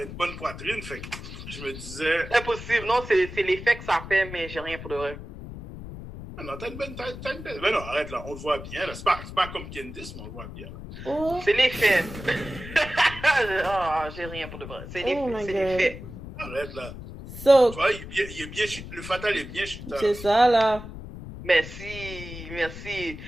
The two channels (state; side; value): noise; left; rumble, 11 dB below the sound